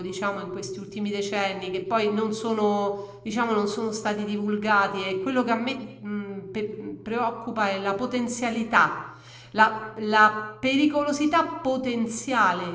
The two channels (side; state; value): both; identical; correlation 1.00